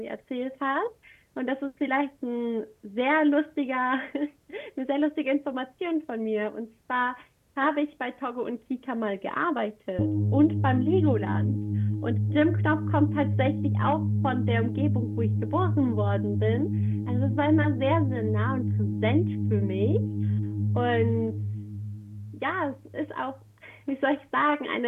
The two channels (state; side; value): identical; both; correlation 1.00